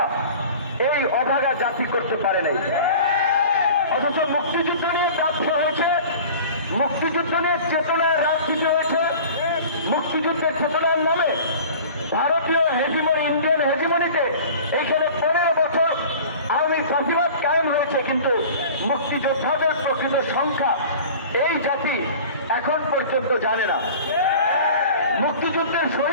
এই অভাগা জাতি করতে পারে নাই। অথচ মুক্তিযুদ্ধ নিয়ে ব্যবসা হয়েছে, মুক্তিযুদ্ধ নিয়ে চেতনায় রাজনীতি হয়েছে, মুক্তিযুদ্ধের চেতনার নামে ভারতীয় হেজিমনি, ইন্ডিয়ান হেজিমনিতে এইখানে 15 বছর আওয়ামী ফাঁসিবাদ কায়েম হয়েছে, কিন্তু মুক্তিযোদ্ধাদের প্রকৃত সংখ্যা এই জাতি এখন পর্যন্ত জানে না। মুক্তিযুদ্ধের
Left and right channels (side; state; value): both; inverted; correlation -0.41